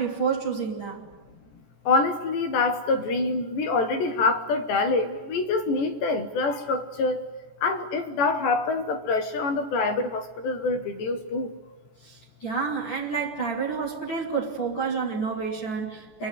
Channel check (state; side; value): late; right; 14 ms